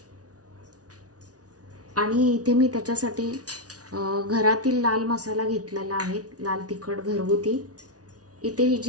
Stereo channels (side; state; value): left; late; 0.68 ms